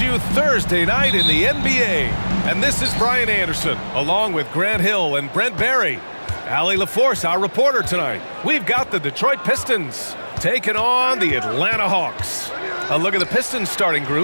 Thursday night in the NBA. And this is Brian Anderson, along with Grant Hill and Brent Barry. Allie LaForce, our reporter tonight. We've got the Detroit Pistons taking on the Atlanta Hawks. A look at the Pistons starting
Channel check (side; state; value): both; inverted; correlation -1.00